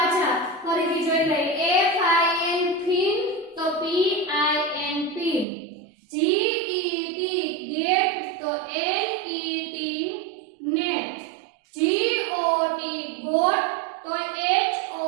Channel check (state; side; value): drops out; left; at 5.5 s